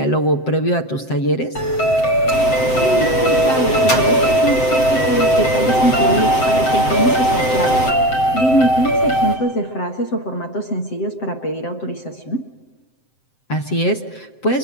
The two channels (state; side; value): late; right; 7.7 ms